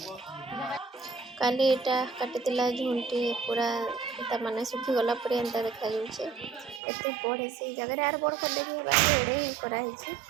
काली एटा काटिला झुंटी पूरा एटा माने सुखी गला पूरा एंता देखा जाउछे एते बड़ से जगह यार बड़ कर देबी बाकी एडे ही करा हिची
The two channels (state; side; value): drops out; left; at 6.8 s